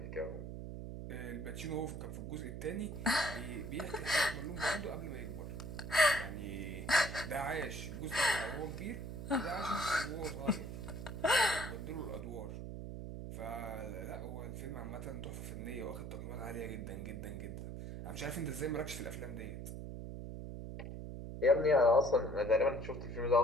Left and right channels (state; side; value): noise; right; hum, 7 dB below the sound